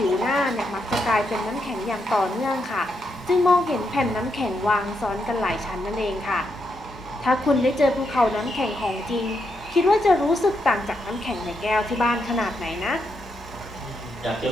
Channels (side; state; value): both; normal; correlation 0.81